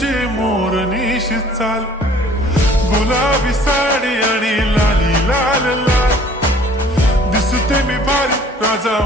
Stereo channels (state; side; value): normal; both; correlation 0.53